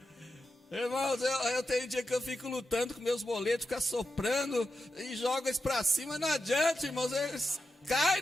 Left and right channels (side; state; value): both; normal; correlation 0.89